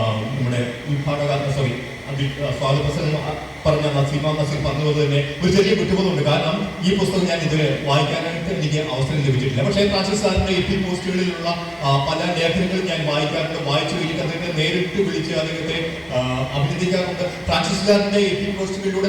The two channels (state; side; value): identical; both; correlation 1.00